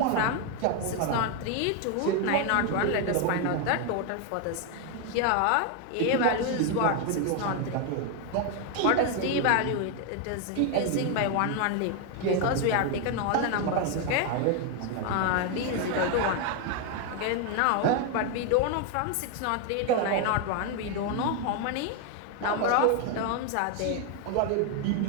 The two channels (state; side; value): different; both; correlation 0.01